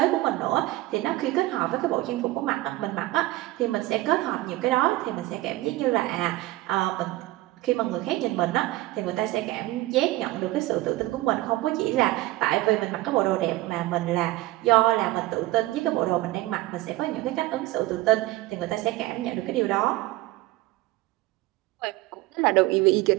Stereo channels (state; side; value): quieter; left; 18.1 dB